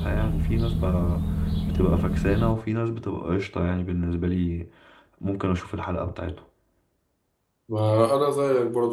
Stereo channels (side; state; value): both; identical; correlation 1.00